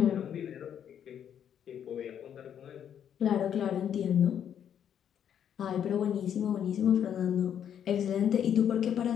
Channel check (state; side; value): quieter; right; 9.1 dB